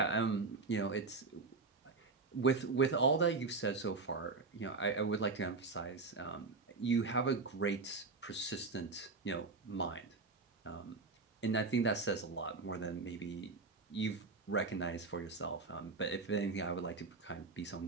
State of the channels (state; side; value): quieter; left; 4.0 dB